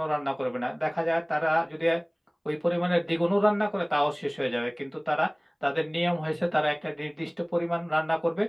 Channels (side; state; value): both; identical; correlation 1.00